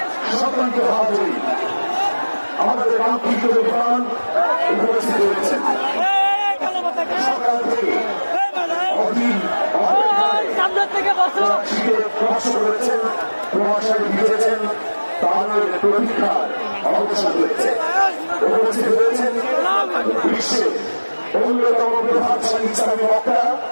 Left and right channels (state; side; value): inverted; both; correlation -1.00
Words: সকলকে হাজির, আমাদের কাঙ্ক্ষিত বিমান উপস্থিত হয়েছেন। সকাল থেকে অধীর কষ্ট করেছেন, প্রভাষায় ভিজেছেন, তাদের প্রতীক্ষার অবসান হয়েছে। উপস্থিত হয়েছেন বিশ্বের অন্যতম প্রভাবশালী ইসলামী বক্তা